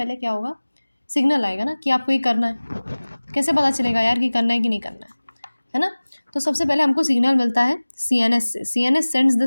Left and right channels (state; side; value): inverted; both; correlation -1.00